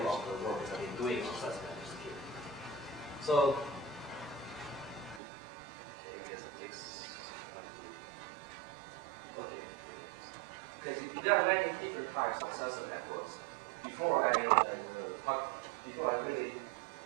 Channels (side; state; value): left; drops out; at 5.2 s